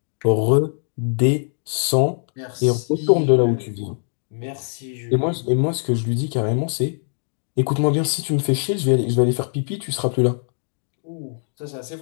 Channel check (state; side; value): silent; right; digital silence